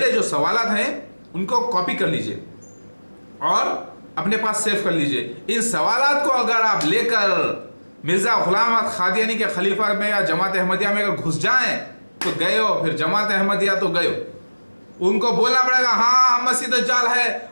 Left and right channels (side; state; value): both; inverted; correlation -1.00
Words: जो सवालात हैं उनको कॉपी कर लीजिए और अपने पास सेव कर लीजिए। इन सवालात को अगर आप लेकर मिर्जा गुलाम अहमद कादियानी के खलीफा में या जमात अहमदिया में अगर घुस जाएं तो गए हो, फिर जमात अहमदिया तो गए हो। उनको बोलना पड़ेगा हाँ मसीह दज्जाल है,